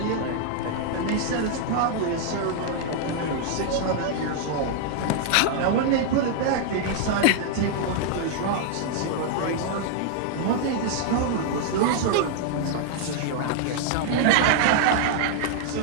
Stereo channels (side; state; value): both; different; correlation 0.00